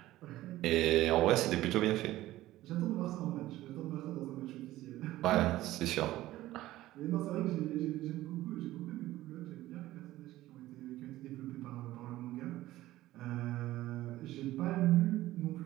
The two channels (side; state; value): left; quieter; 15.8 dB